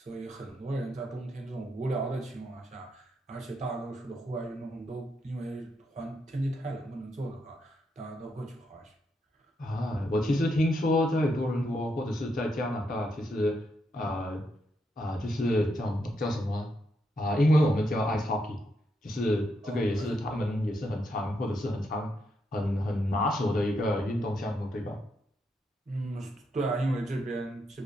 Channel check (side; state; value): both; normal; correlation 0.80